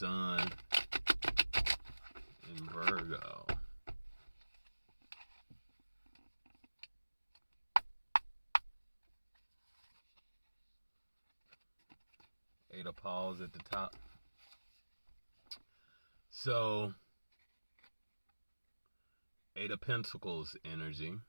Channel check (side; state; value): both; inverted; correlation -1.00